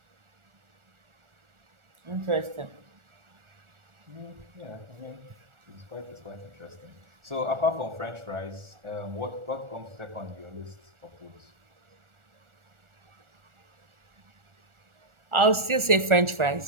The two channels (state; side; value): late; left; 1.4 ms